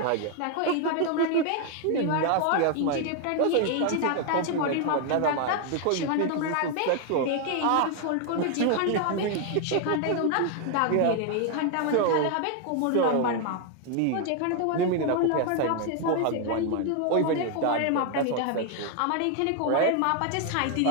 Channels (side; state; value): both; different; correlation 0.00